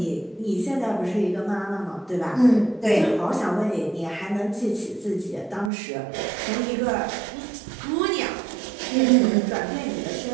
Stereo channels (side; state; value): left; drops out; at 5.7 s